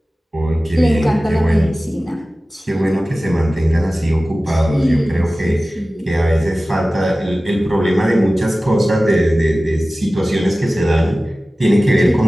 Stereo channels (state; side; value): normal; both; correlation 0.96